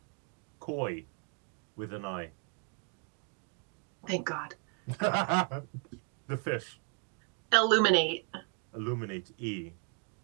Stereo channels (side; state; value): left; quieter; 37.1 dB